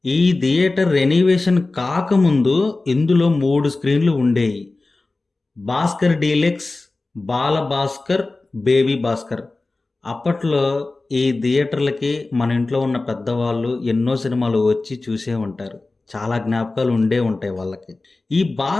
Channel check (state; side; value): quieter; right; 3.3 dB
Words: ఈ థియేటర్ రెనోవేషన్ కాకముందు ఇందులో 3 స్క్రీన్‌లు ఉండేయి. భాస్కర్ డీలక్స్, బాల భాస్కర్, బేబీ భాస్కర్. అప్పట్లో ఈ థియేటర్లకి మన ఇంట్లో ఉన్న పెద్దవాళ్ళు ఎన్నో సినిమాలు వచ్చి చూసే ఉంటారు. చాలా జ్ఞాపకాలు ఉండే ఉంటాయి వాళ్ళకి. ఈ